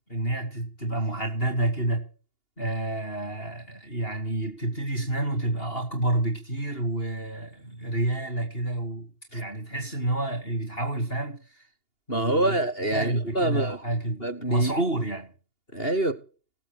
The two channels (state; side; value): late; right; 2.8 ms